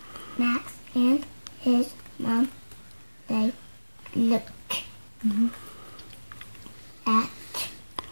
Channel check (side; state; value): both; inverted; correlation -1.00